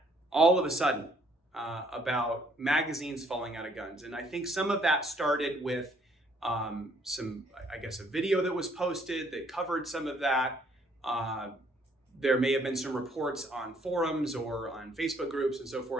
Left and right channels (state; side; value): normal; both; correlation 0.65